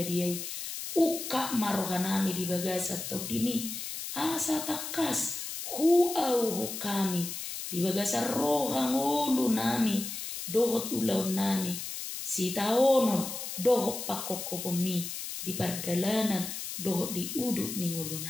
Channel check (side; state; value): left; noise; hiss, 6 dB below the sound